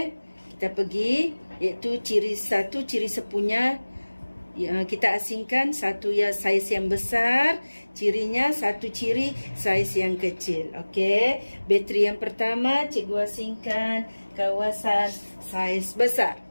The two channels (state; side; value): inverted; both; correlation -1.00